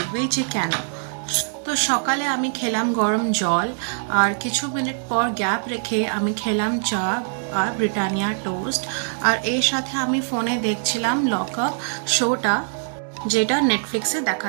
যে কেন। তো সকালে আমি খেলাম গরম জল আর কিছু মিনিট পর গ্যাপ রেখে আমি খেলাম চা আর ব্রিটানিয়া টোস্ট। আর এর সাথে আমি ফোনে দেখছিলাম লক আপ শোটা, যেটা নেটফ্লিক্সে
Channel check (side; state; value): left; silent; digital silence